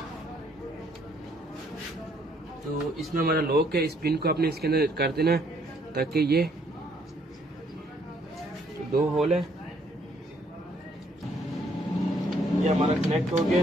तो इसमें हमारा लॉक है, इस पिन को आपने इसके अंदर कर देना है ताकि ये 2 होल है, ये हमारा कनेक्ट हो गया।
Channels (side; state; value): both; normal; correlation 0.67